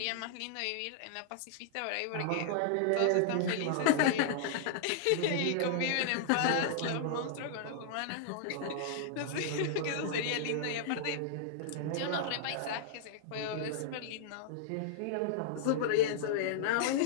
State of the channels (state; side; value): different; both; correlation -0.01